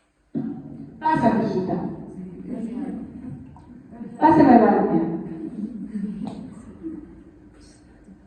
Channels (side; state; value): both; identical; correlation 1.00